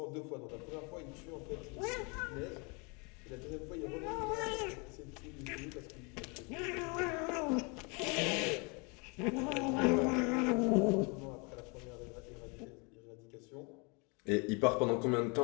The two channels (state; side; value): quieter; right; 31.4 dB